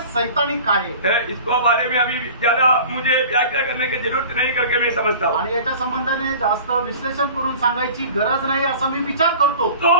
सैतानिक आहे. इसको बारे में अभी ज्यादा मुझे व्याख्या करने की जरूरत नहीं करके मैं समझता हूँ. आणि याच्या संबंधाने जास्त विश्लेषण करून सांगायची गरज नाही असं मी विचार करतो. तो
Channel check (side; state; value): both; inverted; correlation -0.42